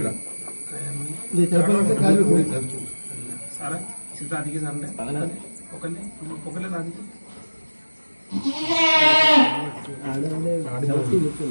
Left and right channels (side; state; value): both; inverted; correlation -1.00